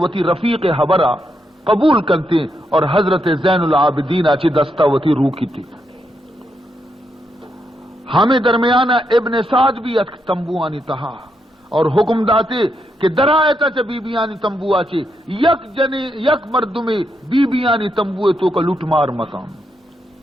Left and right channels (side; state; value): both; normal; correlation 0.81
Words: رفیق حبرہ قبول کرتے اور حضرت زین العابدین آچی دستہ وتی روکی تھی ہمیں درمیانہ ابن سعد بھی تمبوانی تہا اور حکم داتے کہ درائیتا چا بی بیانی تمبو آچے یک مردمی بی بیانی تمبوے تو کا لٹ مار مکان